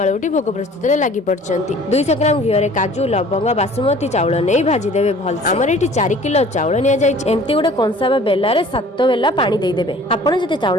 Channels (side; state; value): both; normal; correlation 0.50